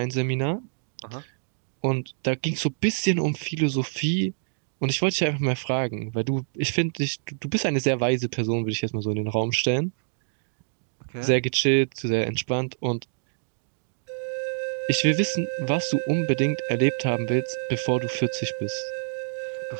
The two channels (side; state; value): left; silent; digital silence